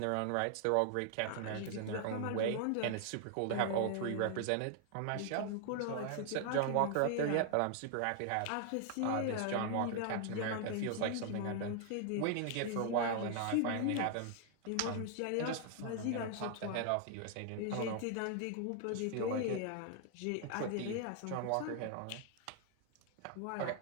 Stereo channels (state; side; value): different; both; correlation 0.00